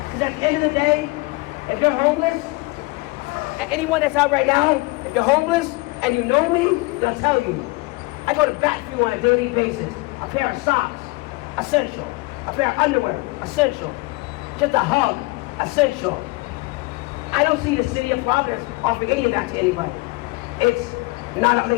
Because at the end of the day, if you're homeless, and anyone that's out right now, if you're homeless and you know me, they'll tell you. I go to bat for you on a daily basis. A pair of socks, essential. A pair of underwear, essential. Just a hug, essential. I don't see the city of Providence offering any of that to anybody. It's not,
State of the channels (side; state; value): right; quieter; 24.2 dB